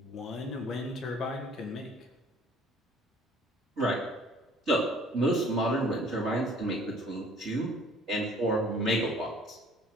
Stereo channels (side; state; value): both; normal; correlation 0.54